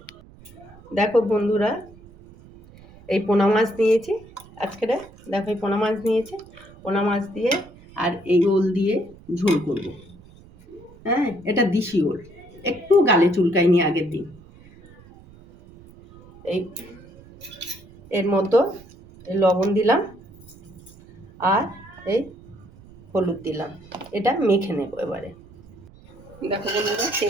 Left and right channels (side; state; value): right; noise; rumble, 22 dB below the sound